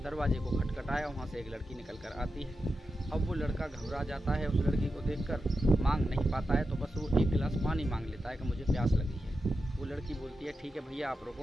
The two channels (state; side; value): normal; both; correlation 0.90